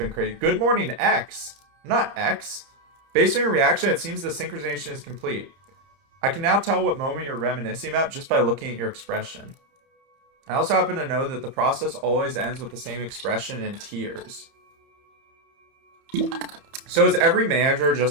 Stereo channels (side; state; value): left; late; 30 ms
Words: crazy. Good morning, X. Not X. Based on your reaction, it seems the synchronization is complete. I can now tell what moment you're reminiscing about just by looking at your expression. I also happen to know that the process always ends with the same expression and tears. So is every manager